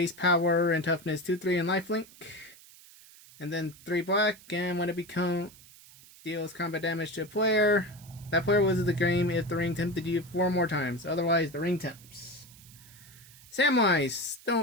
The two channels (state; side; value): noise; right; hiss, 22 dB below the sound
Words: power and toughness 2/3 and lifelink. And then 3 black, and when it deals combat damage to a player, that player loses the game if the ring tempted you 4 more times. Otherwise, the ring tempts. Samwise,